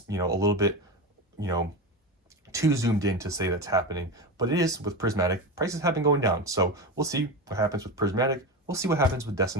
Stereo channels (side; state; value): both; normal; correlation 0.21